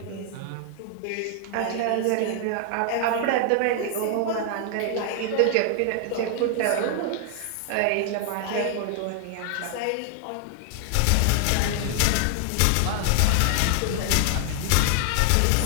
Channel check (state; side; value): different; both; correlation 0.00